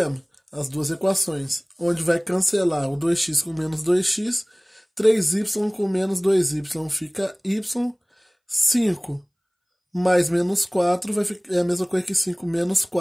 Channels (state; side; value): identical; both; correlation 1.00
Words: as duas equações, onde vai cancelar o 2x com menos 2x, 3y com menos 2y fica y, 5 mais menos 4 vai ficar, é a mesma coisa que 5 menos